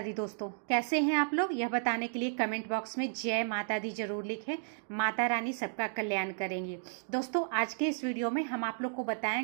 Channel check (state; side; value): silent; left; digital silence